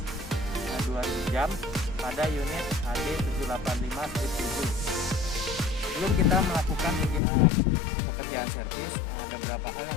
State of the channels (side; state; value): right; drops out; at 7.2 s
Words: 2000 jam pada unit HD 785/7. Sebelum kita melakukan pekerjaan servis, ada beberapa hal